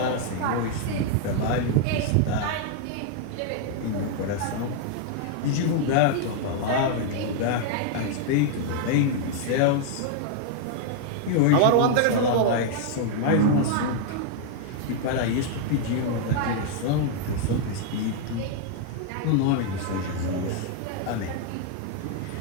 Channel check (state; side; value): different; both; correlation 0.00